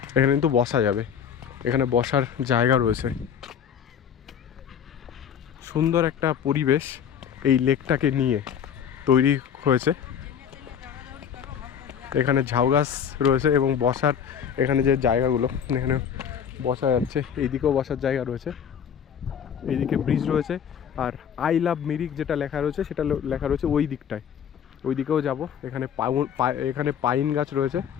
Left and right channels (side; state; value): right; quieter; 8.2 dB